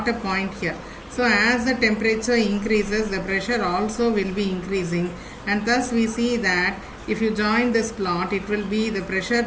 a point here. So as the temperature increases, the pressure also will be increasing, and thus we see that if you join this plot, it will be the pressure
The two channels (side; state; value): both; identical; correlation 1.00